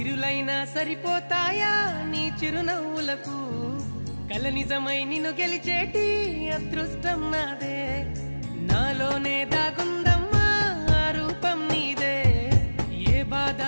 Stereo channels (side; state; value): both; inverted; correlation -1.00